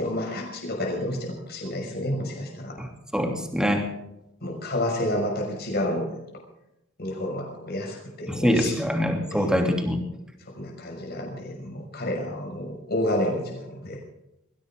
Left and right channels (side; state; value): both; normal; correlation 0.56